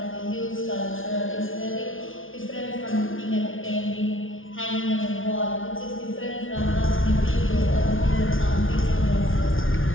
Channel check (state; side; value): late; right; 0.58 ms